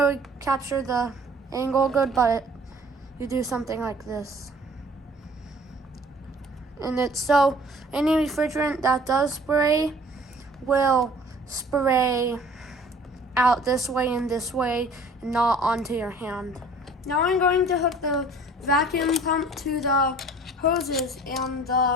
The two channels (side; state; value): both; normal; correlation 0.50